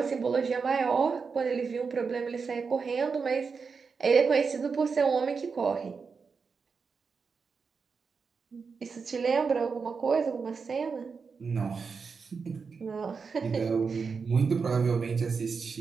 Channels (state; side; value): quieter; left; 5.3 dB